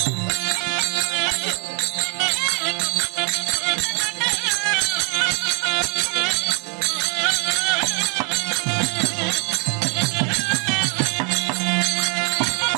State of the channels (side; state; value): left; quieter; 36.1 dB